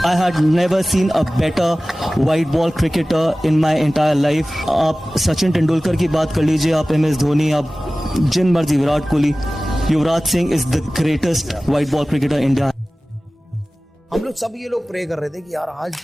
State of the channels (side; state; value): both; normal; correlation 0.97